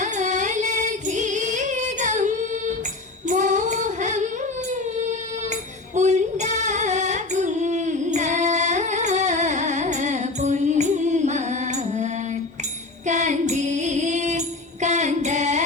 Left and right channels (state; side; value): quieter; right; 3.3 dB